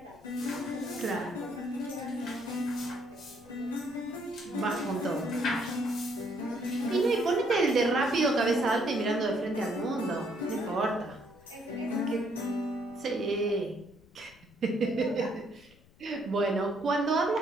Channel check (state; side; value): noise; left; rumble, 27 dB below the sound